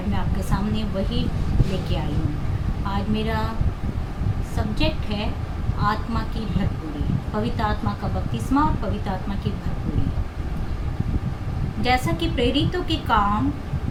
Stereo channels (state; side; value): identical; both; correlation 1.00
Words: मैं आपके सामने वही लेके आई हूँ। आज मेरा सब्जेक्ट है आत्मा की भरपूरी, पवित्र आत्मा का बपतिस्मा और पवित्र आत्मा की भरपूरी। जैसा कि प्रेरितों के काम